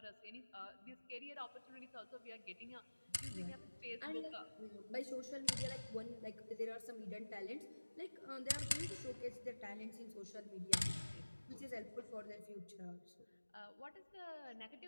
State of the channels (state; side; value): inverted; both; correlation -1.00